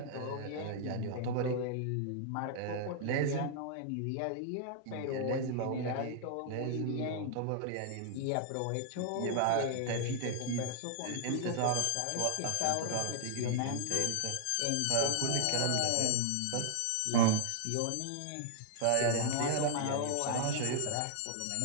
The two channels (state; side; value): different; both; correlation 0.00